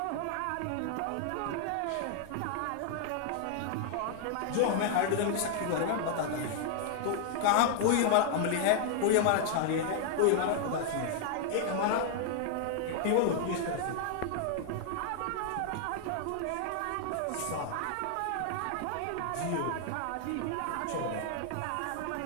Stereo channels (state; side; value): different; both; correlation 0.00